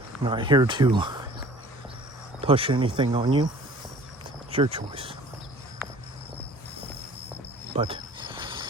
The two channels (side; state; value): both; normal; correlation 0.49